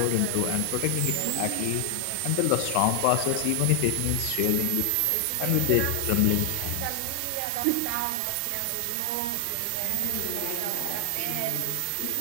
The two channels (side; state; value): both; different; correlation 0.00